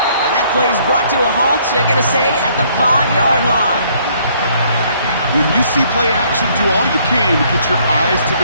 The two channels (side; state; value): both; inverted; correlation -0.64